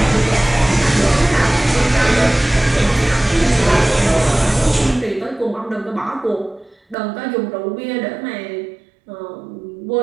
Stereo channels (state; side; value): drops out; left; at 7.0 s